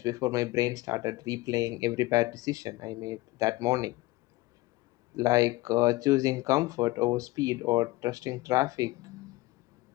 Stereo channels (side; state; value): right; quieter; 20.1 dB